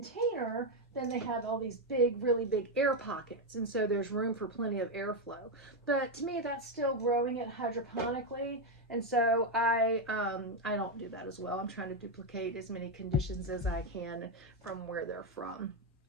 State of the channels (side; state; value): both; normal; correlation 0.05